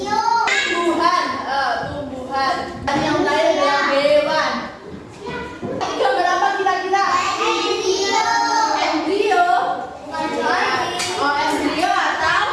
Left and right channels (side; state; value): both; identical; correlation 1.00